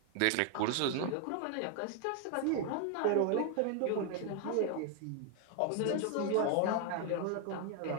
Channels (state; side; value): different; both; correlation 0.00